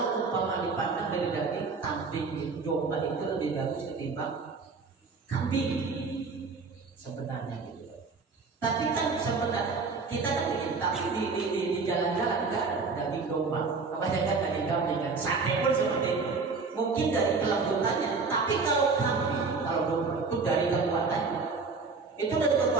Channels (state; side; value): quieter; left; 4.4 dB